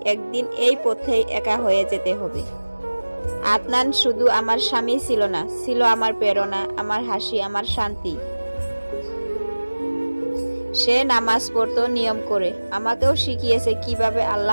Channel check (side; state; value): both; inverted; correlation -1.00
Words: একদিন এই পথেই একা হয়ে যেতে হবে। আদনান শুধু আমার স্বামী ছিল না, ছিল আমার প্রেরণা, আমার হাসি, আমার শান্তি। সে নামাজ পড়তো নিয়ম করে, আমাকেও শিখিয়েছে কিভাবে